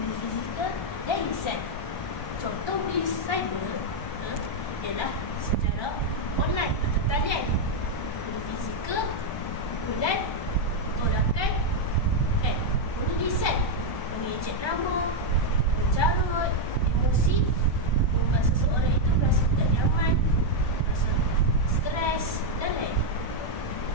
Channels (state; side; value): late; right; 1.3 ms